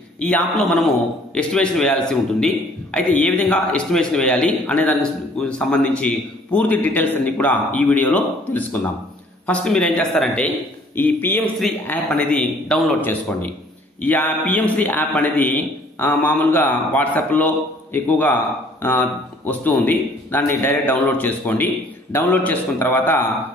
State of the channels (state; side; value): normal; both; correlation 0.57